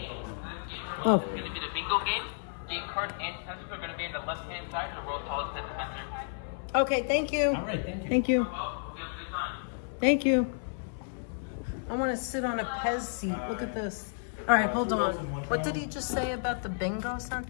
Oh. It's going to be the bingo game. Game cards and pencils are going to be on the left-hand side of the world's tallest Pez Dispenser. Okay, thank you. All right, thank you. Thank you. Well, you have a good time. Thank you. I want to sit on a Pez seat. Look at this. All right, hold on. What did he just say about the bingo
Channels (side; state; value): right; silent; 57 dB below the other